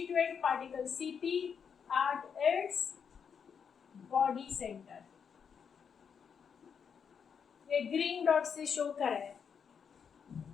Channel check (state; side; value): quieter; right; 6.8 dB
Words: particle Cp at its body center। ये ग्रीन डॉट से शो करा है।